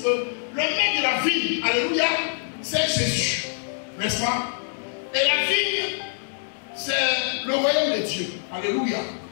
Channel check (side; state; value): right; silent; 62 dB below the other